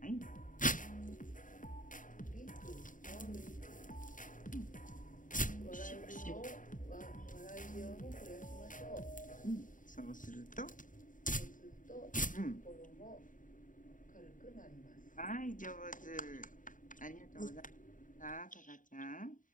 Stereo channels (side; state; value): right; late; 0.38 ms